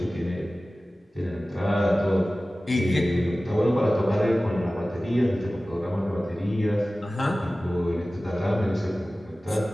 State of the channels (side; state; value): both; normal; correlation 0.97